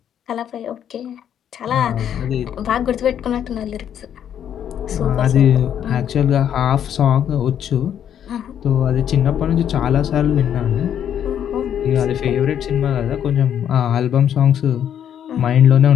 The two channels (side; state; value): right; quieter; 9.5 dB